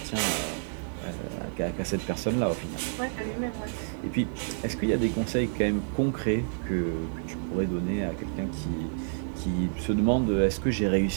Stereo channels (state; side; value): silent; left; 59 dB below the other